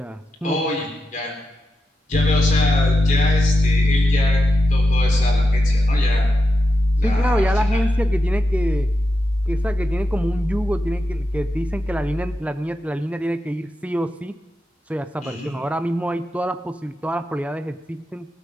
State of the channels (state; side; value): normal; both; correlation 0.88